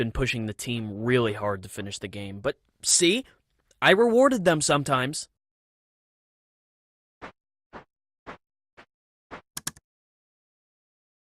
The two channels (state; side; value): identical; both; correlation 1.00